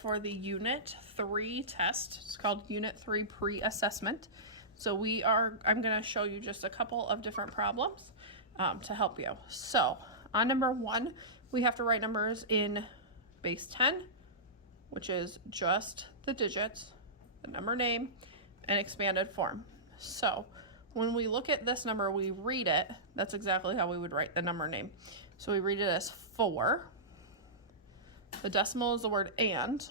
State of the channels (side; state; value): both; normal; correlation -0.17